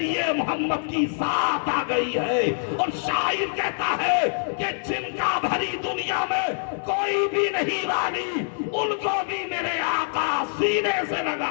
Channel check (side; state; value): right; silent; 62 dB below the other